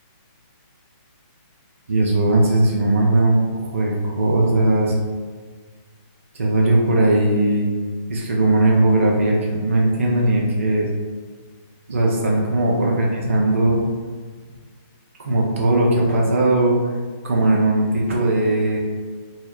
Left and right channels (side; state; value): both; inverted; correlation -0.77